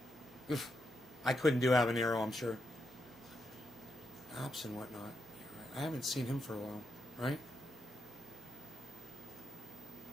Oof. I couldn't do habanero, I'm sure. Apps and whatnot. I haven't seen him for a while, right?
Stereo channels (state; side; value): normal; both; correlation 0.83